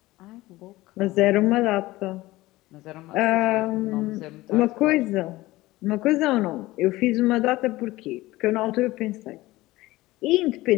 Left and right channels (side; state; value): right; quieter; 18.5 dB